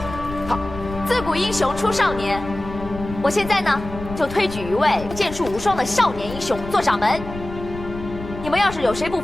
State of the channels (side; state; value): left; noise; rumble, 11 dB below the sound